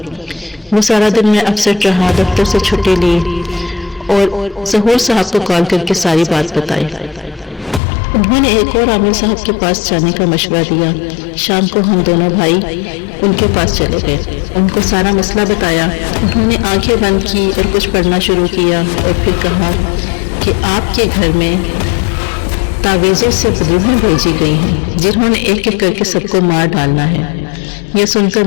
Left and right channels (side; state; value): right; drops out; at 7.8 s